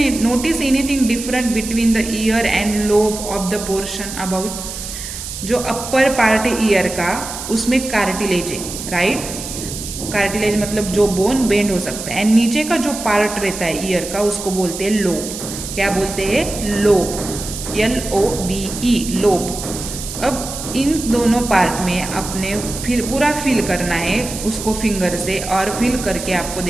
notice anything different between the year and lobe of the portion about? जो अपर पार्ट है ईयर का, उसमें कार्टिलेज है, राइट। कार्टिलेज मतलब जो बोन बेंड हो सकता है, एंड नीचे का जो पार्ट रहता है ईयर का उसको बोलते हैं लोब। क्या बोलते हैं? लोब। LOBE, lobe. अब इन दोनों पार्ट में अपने पूरा फील करना है उसको फिंगर से, और फील करके आपको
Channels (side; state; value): right; noise; hiss, 8 dB below the sound